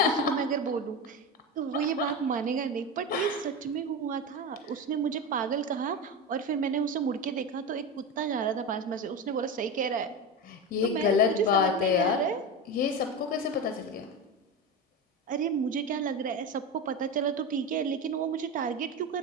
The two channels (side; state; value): both; normal; correlation 0.20